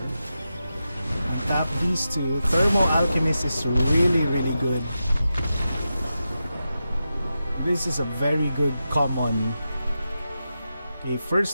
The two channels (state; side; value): inverted; both; correlation -0.90